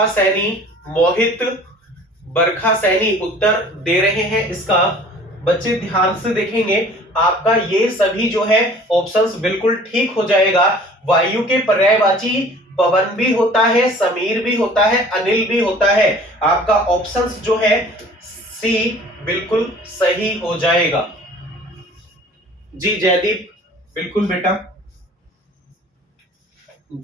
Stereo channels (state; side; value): normal; both; correlation 0.48